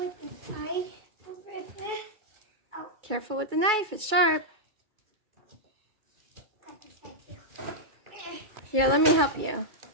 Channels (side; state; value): left; late; 2.3 ms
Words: inside? Oh. Careful with the knife. It's sharp. Got this side too. Here, let me help you.